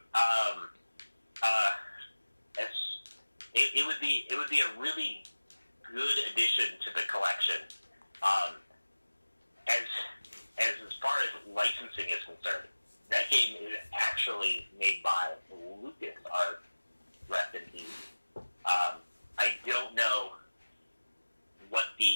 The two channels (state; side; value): inverted; both; correlation -1.00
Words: It would be a really good addition to the collection. As far as licensing is concerned, that game is actually made by LucasArts. Rest in peace. I don't know what